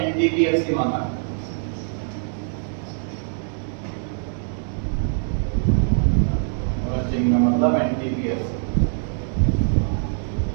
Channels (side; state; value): left; silent; digital silence